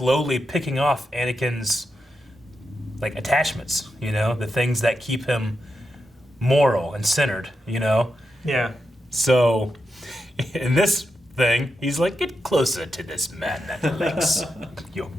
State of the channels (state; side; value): normal; both; correlation 0.86